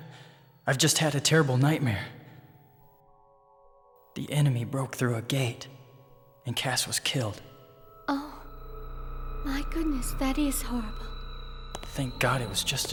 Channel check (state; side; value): identical; both; correlation 1.00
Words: I've just had a terrible nightmare. The enemy broke through a gate, and Cass was killed. Oh, my goodness, that is horrible. Thank God it was just